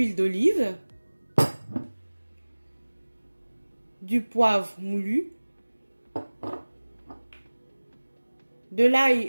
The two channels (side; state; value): both; inverted; correlation -1.00